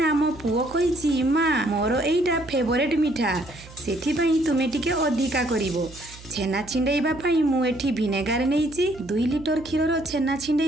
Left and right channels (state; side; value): noise; right; hum, 19 dB below the sound